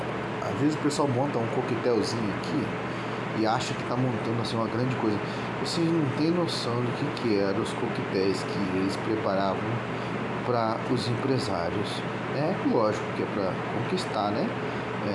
às vezes o pessoal monta um coquetelzinho aqui e acha que está montando assim uma grande coisa. Vocês não têm noção do que eram os coquetéis que eles preparavam para os empresários. É lógico que é para conquistar, né?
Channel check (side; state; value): both; identical; correlation 1.00